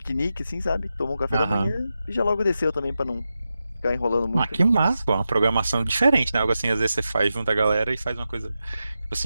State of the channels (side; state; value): both; inverted; correlation -0.90